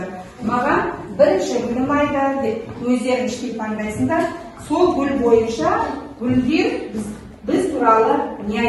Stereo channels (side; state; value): both; identical; correlation 1.00